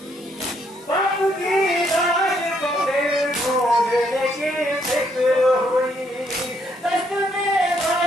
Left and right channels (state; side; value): normal; both; correlation 0.72